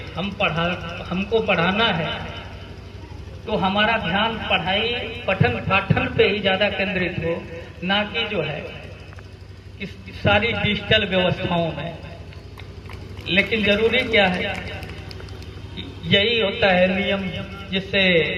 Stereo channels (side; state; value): both; identical; correlation 1.00